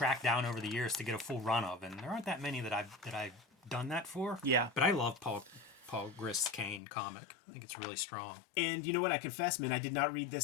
down over the years to get a full run of, and there aren't that many that I've done that for. Yeah. But I love Paul Grist's Kane comic. I think it's really strong. And you know what? I confess, man, I did not read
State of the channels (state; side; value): drops out; right; at 6.8 s